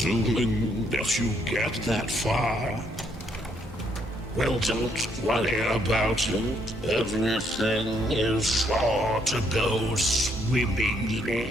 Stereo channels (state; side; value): normal; both; correlation 0.72